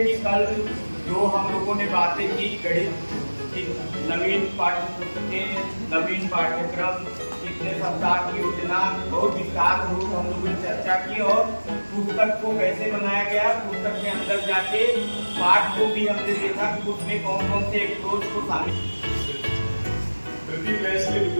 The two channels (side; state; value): both; inverted; correlation -1.00